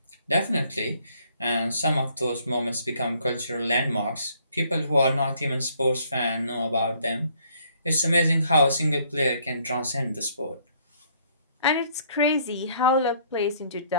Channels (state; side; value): inverted; both; correlation -0.64